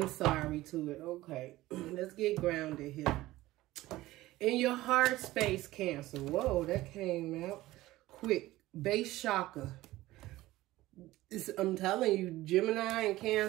sorry to it. Okay, let's get grounded here. In your heart space, Cancer. Whoa, that came out quick. Base chakra. I'm telling you, Gemini and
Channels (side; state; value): left; quieter; 17.1 dB